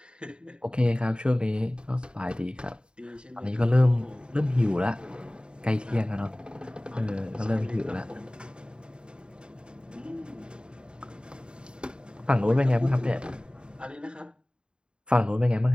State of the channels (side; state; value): left; late; 0.051 ms